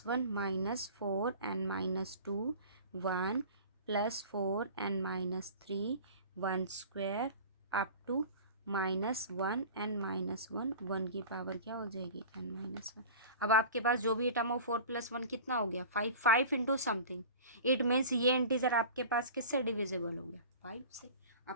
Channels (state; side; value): inverted; both; correlation -0.39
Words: one minus four N minus two, one plus four N minus three, one square up to minus one N minus one, one की power क्या हो जाएगी, N minus one. अब आपके पास जो भी term हो, फोर प्लस वन कितना हो गया, five, five into something, it means ये इंटीजर आपके पास किससे डिविजिबल हो गया, फाइव से।